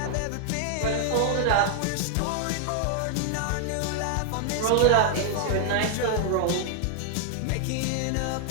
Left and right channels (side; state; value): both; different; correlation 0.00